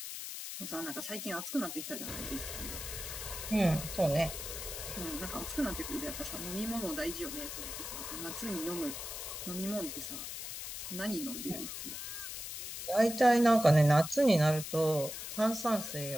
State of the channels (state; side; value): noise; left; hiss, 7 dB below the sound